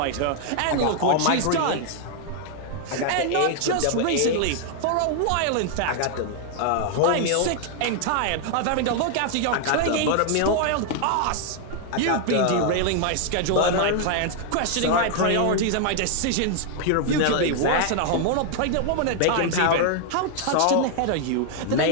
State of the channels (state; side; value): different; both; correlation 0.00